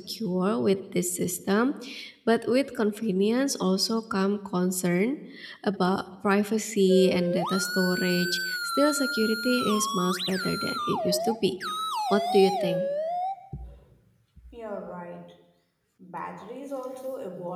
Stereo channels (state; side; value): identical; both; correlation 1.00